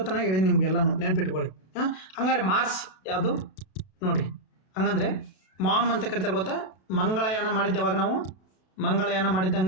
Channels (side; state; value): right; late; 32 ms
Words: ಹೇಳಿ ನಿಮ್ಗೆಲ್ಲನೂ ನೆನ್ಪಿಟ್ಕೊಳ್ಳಿ. ಹಂಗಾರೆ ಮಾರ್ಸ್ ಯಾವುದು ನೋಡಿ. ಹಂಗಂದ್ರೆ ಮಾಮ್ ಅಂತ ಕರಿತಾರೆ ಗೊತ್ತಾ? ಮಂಗಳಯಾನ ಮಾಡಿದ್ದೆ ಯಾವಾಗ ನಾವು? ಮಂಗಳಯಾನ